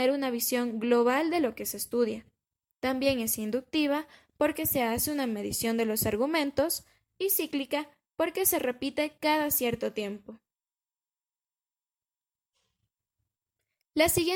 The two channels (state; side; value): identical; both; correlation 1.00